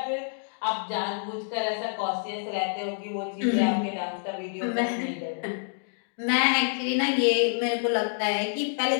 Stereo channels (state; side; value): silent; right; digital silence